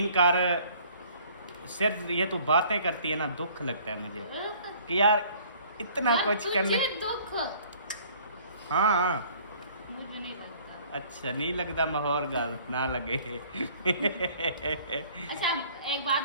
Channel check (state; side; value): inverted; both; correlation -0.55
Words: कर, सिर्फ ये तू बातें करती है ना, दुख लगता है मुझे कि यार इतना यार, कुछ करने। तुझे दुख? हाँ मुझे नहीं लगता। अच्छा नहीं लगता, माहौल गल ना लगे। अच्छा एक बात